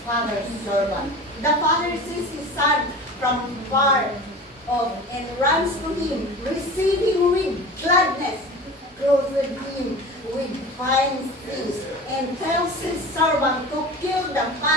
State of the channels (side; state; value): both; normal; correlation 0.35